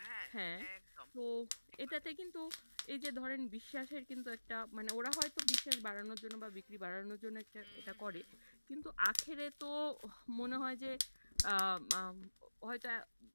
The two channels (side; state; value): both; inverted; correlation -1.00